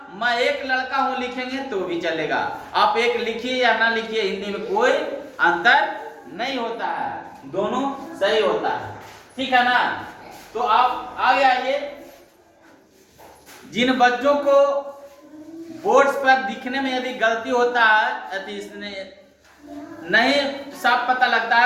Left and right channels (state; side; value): identical; both; correlation 1.00